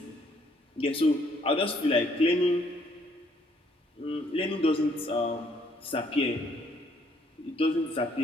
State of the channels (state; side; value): normal; both; correlation 0.66